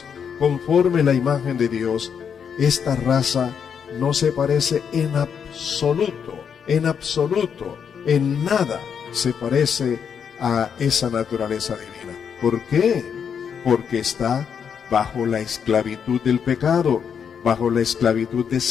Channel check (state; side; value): quieter; right; 7.3 dB